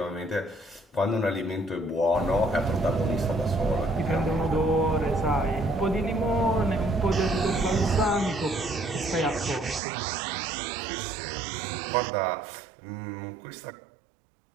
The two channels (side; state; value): left; drops out; at 9.8 s